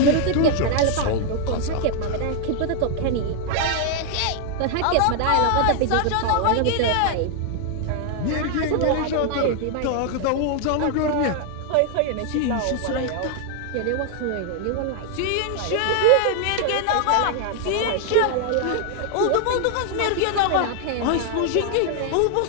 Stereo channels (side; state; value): both; different; correlation 0.00